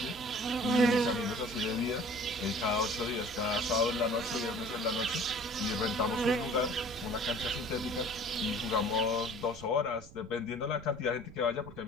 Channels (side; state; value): right; noise; rumble, 18 dB below the sound